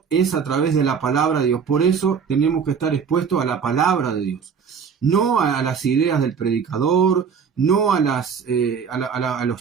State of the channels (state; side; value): quieter; left; 6.5 dB